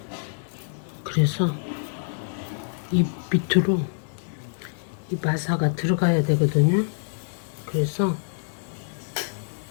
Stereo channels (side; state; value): right; silent; digital silence